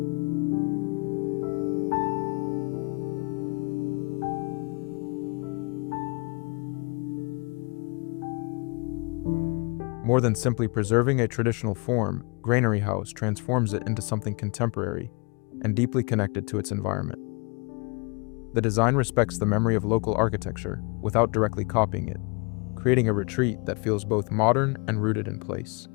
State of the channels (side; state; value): right; quieter; 31.9 dB